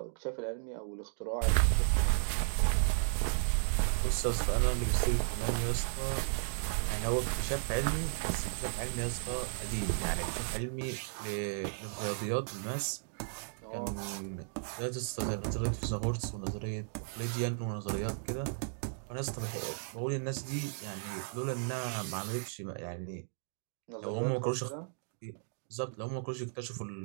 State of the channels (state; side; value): silent; left; digital silence